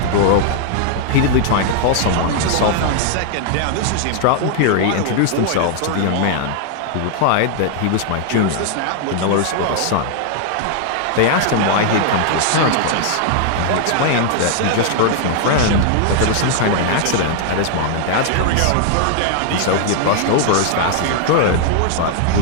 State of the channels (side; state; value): both; different; correlation 0.00